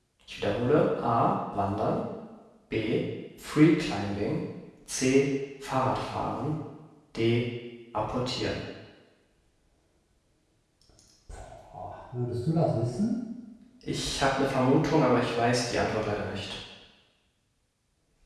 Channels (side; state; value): both; identical; correlation 1.00